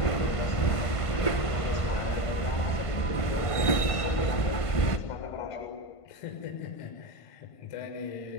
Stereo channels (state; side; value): late; right; 1.5 ms